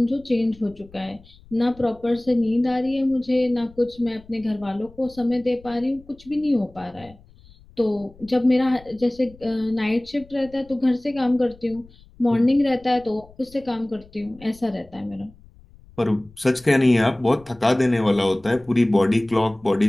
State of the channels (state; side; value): noise; left; rumble, 25 dB below the sound